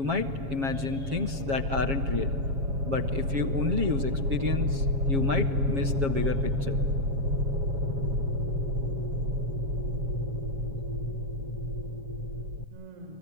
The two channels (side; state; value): left; late; 7.3 ms